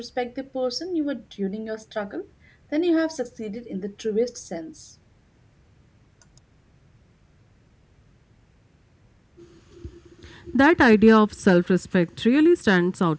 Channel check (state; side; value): identical; both; correlation 1.00